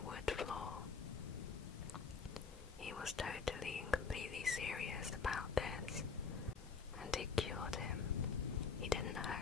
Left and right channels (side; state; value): right; quieter; 5.4 dB